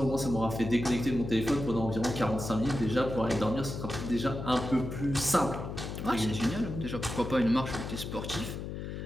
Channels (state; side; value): noise; left; hum, 6 dB below the sound